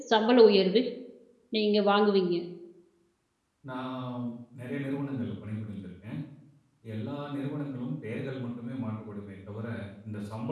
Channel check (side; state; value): both; identical; correlation 1.00